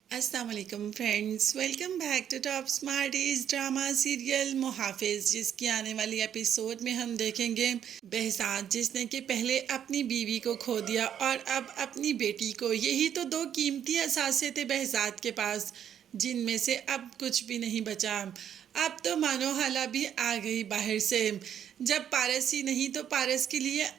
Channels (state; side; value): quieter; left; 9.4 dB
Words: अस्सलाम वालेकुम friends, welcome back to top Smarties drama serial Muhafiz, जिसकी आने वाली एपिसोड में हम देखेंगे behzad जिसने कि पहले अपनी बीवी को खो दिया और अब अपनी बेटी को। यही तो दो कीमती असासे थे behzad के पास, जिनमें से अब कुछ भी नहीं बचा। अब तो मानो हाला भी आ गई बाहर से। जब पारस ही नहीं तो पारस के लिए